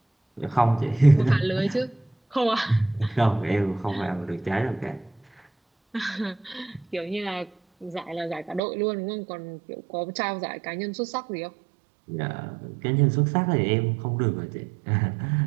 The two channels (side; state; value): left; drops out; at 8.6 s